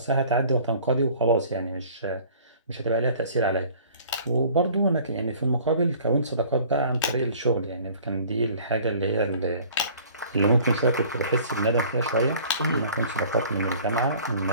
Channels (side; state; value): both; inverted; correlation -0.50